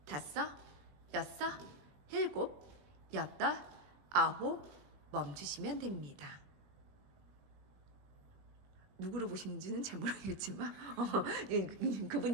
다섯 여섯 일곱 여덟 아홉 멈추시면 됩니다. 누구를 보시는지는 잘 모르겠지만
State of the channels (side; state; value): left; late; 21 ms